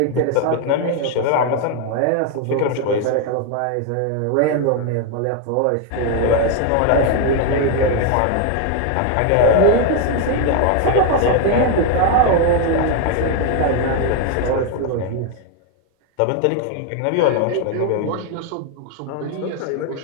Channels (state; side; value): different; both; correlation 0.01